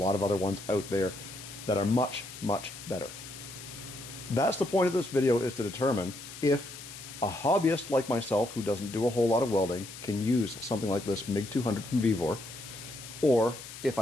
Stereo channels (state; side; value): noise; left; hiss, 13 dB below the sound